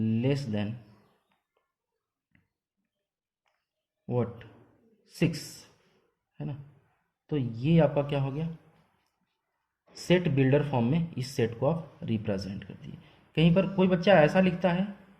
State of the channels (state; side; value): identical; both; correlation 1.00